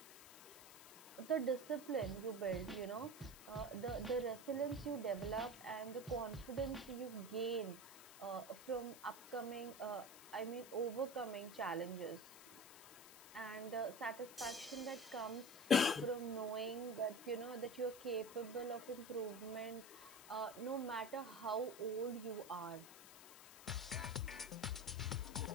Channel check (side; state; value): left; noise; hiss, 15 dB below the sound